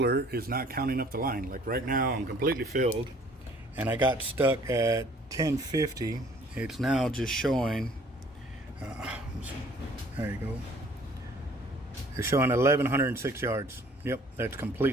is not counting up the line. Like right now I'm completely filled, and I got stuck at 1050. It's now just showing, there you go. It's showing 1,106 yards. Yep, that's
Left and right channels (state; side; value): normal; both; correlation 0.56